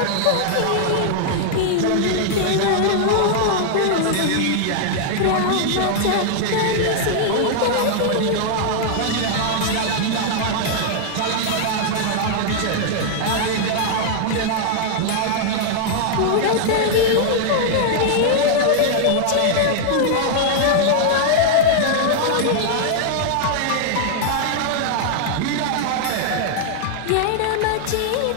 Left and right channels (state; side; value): different; both; correlation -0.01